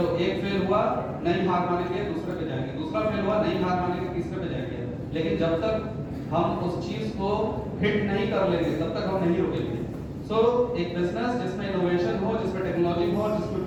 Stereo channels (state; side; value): identical; both; correlation 1.00